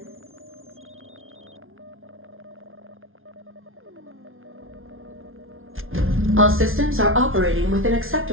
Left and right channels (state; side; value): late; left; 0.60 ms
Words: All systems are operating within